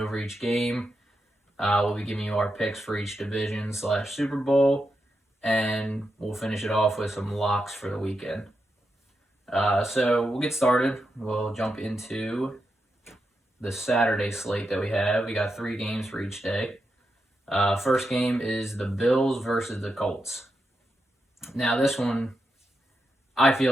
each game. We'll be giving you our picks for each division / Super Bowl, and we'll finish it off with some locks for the weekend. So we'll get started. We'll jump into the Saturday slate that we have. We got 3 games for each day. First game is the Bills versus the Colts. Now this one, I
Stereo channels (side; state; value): both; normal; correlation 0.86